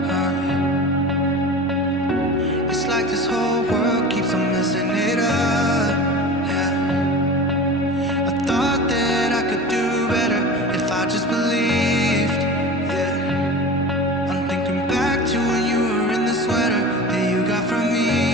it's like this whole world keeps on messing it up, yeah. I thought that I could do better if I just believed, yeah. I'm thinking back to when you were in the sweater that you got from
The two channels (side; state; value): both; normal; correlation 0.34